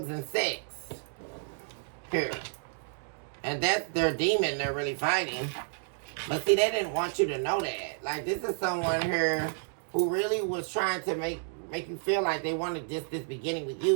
and sex here. And that's their demon they're really fighting. But see, they didn't want you to know that. Like, this is someone here who really was trying to make you feel like they wanted this beginning with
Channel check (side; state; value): left; silent; 57 dB below the other